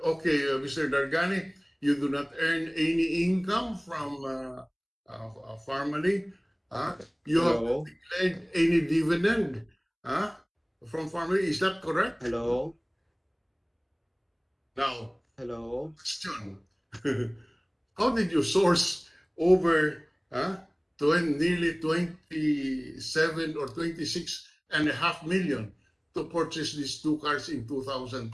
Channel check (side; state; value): both; identical; correlation 1.00